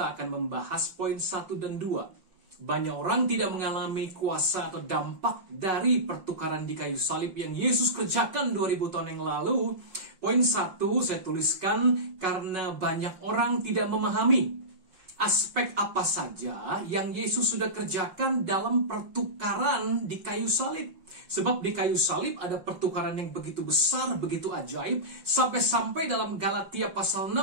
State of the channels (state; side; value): late; left; 5.6 ms